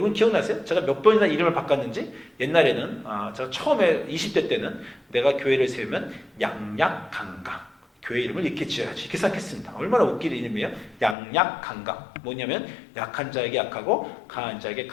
기억나세요? 제가 몇 번이나 이름을 바꿨는지. 옛날에는 제가 처음에 20대 때는 내가 교회를 세우면 양약강강, 교회 이름을 이렇게 지어야지. 이렇게 생각했습니다. 얼마나 웃긴 이름이에요? 양약강강. 뭐냐면 약한 자에게 약하고 강한 자에게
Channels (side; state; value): right; drops out; at 11.2 s